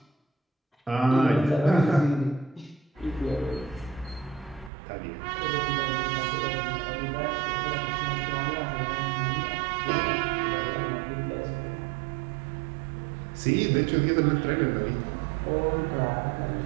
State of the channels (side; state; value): left; drops out; at 4.7 s